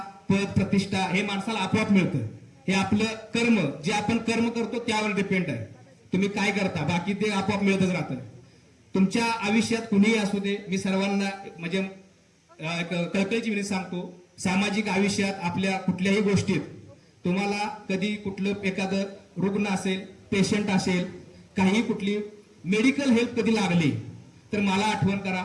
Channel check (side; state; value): both; identical; correlation 1.00